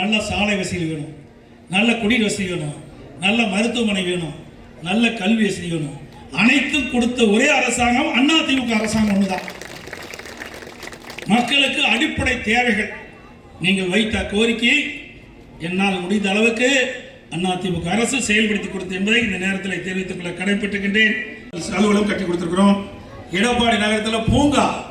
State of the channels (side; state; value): both; identical; correlation 1.00